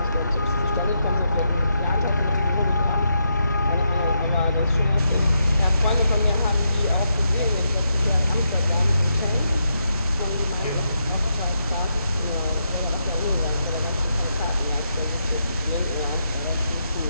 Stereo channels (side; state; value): both; inverted; correlation -0.82